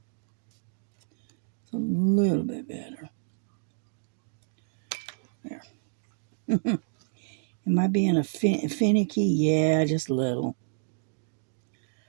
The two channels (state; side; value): silent; left; digital silence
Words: It's a little bit better. There. Am I being finicky? Yeah, just a little.